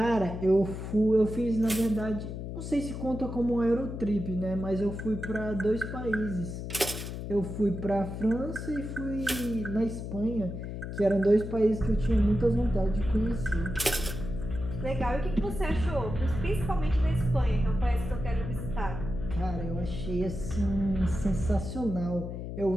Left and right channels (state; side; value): noise; left; hum, 6 dB below the sound